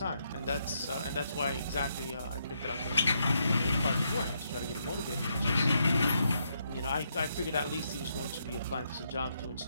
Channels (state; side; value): inverted; both; correlation -0.78